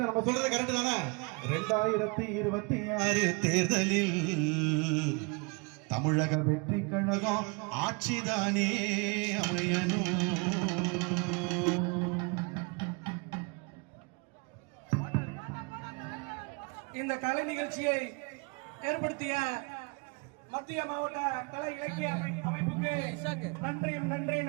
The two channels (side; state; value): left; quieter; 31.5 dB